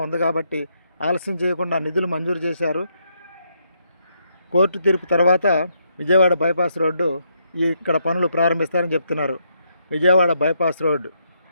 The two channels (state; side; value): inverted; both; correlation -0.77